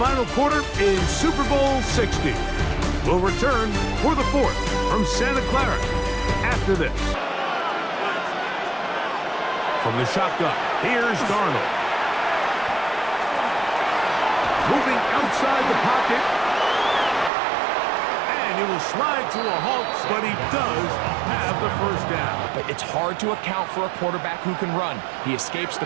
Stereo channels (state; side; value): drops out; left; at 17.3 s